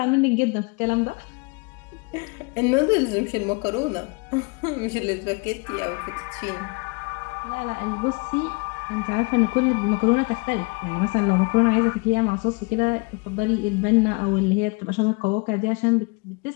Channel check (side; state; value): right; quieter; 29.6 dB